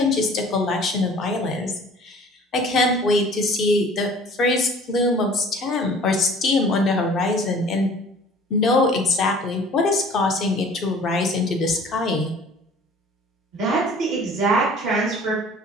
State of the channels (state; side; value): normal; both; correlation 0.49